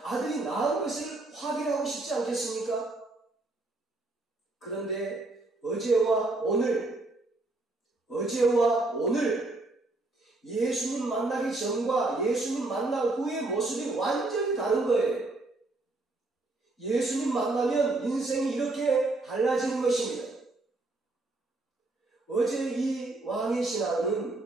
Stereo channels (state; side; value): quieter; left; 3.0 dB